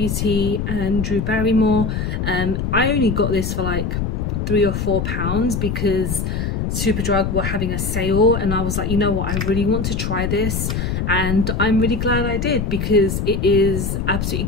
and Drew Barrymore. I only got this for like £3 or £4 because Superdrug were having a sale, and I was like, you know what, I really want to try this, and I'm really glad I did because it is absolutely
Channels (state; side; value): noise; left; rumble, 1 dB below the sound